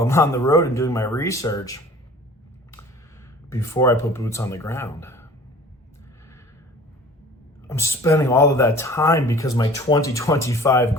I'm on the road and doing my research before I put boots on the ground. I'm spending all of that time because my 2025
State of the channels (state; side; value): normal; both; correlation 0.46